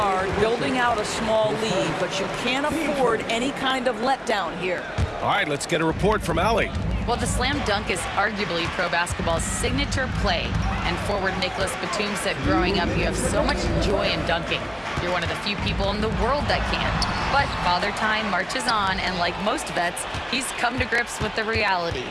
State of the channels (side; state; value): both; identical; correlation 1.00